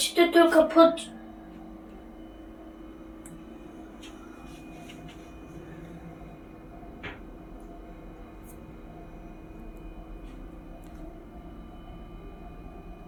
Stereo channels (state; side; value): identical; both; correlation 1.00